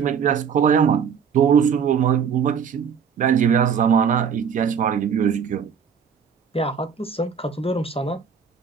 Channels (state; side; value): quieter; left; 7.0 dB